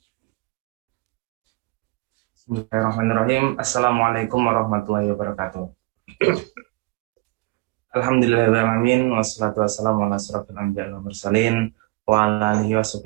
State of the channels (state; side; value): quieter; left; 23.0 dB